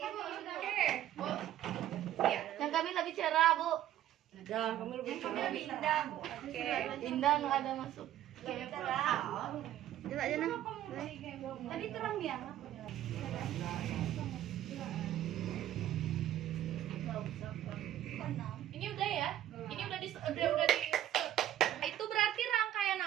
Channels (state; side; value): quieter; left; 12.3 dB